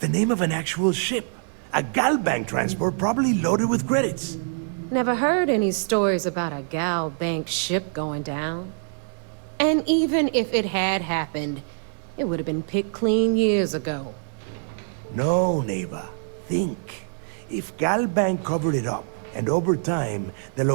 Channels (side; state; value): left; silent; digital silence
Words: name of an actual ship. A Galbank transport probably loaded with credits. Never heard any stories about a Gal Bank ship going down. And even if it had happened, it would have been picked clean years ago. No, neighbor. Think. If Galbank covered it up, and over time, the